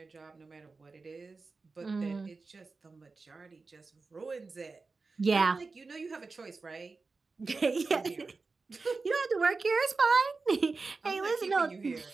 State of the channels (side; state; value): left; quieter; 4.1 dB